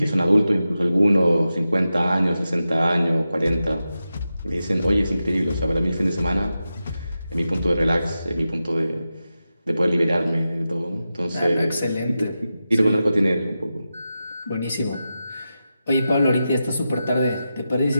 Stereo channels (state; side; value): inverted; both; correlation -0.91